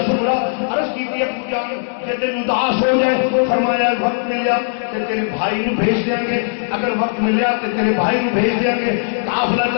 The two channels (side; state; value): right; silent; digital silence